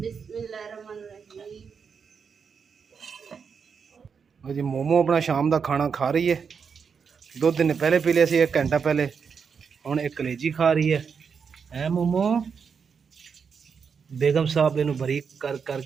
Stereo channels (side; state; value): left; quieter; 6.2 dB